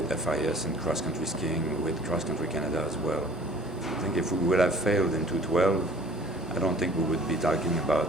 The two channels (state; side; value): normal; both; correlation 0.49